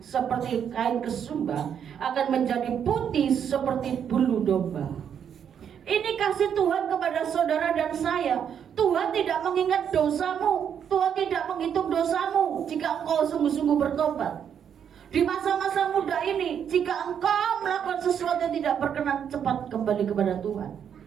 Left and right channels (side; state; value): left; quieter; 8.3 dB